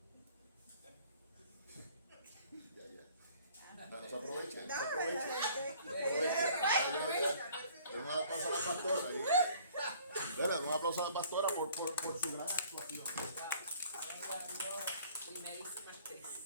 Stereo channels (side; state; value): both; inverted; correlation -0.55